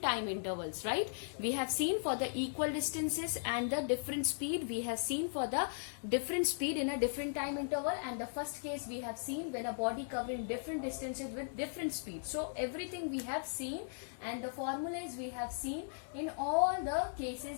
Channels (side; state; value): right; silent; digital silence